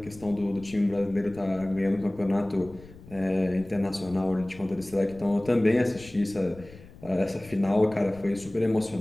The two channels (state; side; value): noise; left; rumble, 20 dB below the sound